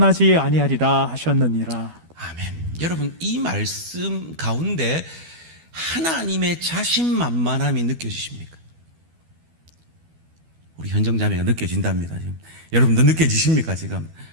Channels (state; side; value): late; left; 12 ms